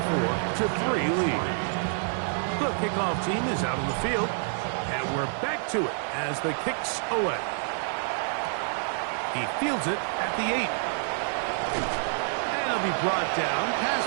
lead. The kickoff team is out on the field. And we're back to it as the kick's away. He fields it at the 8. And he'll be brought down past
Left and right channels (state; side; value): silent; left; 60 dB below the other